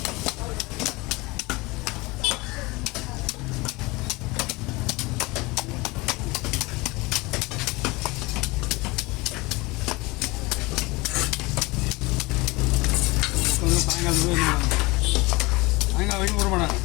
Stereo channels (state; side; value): quieter; right; 23.4 dB